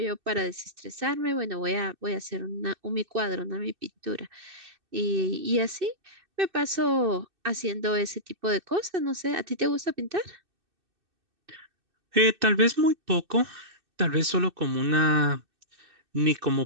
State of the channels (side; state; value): left; late; 2.6 ms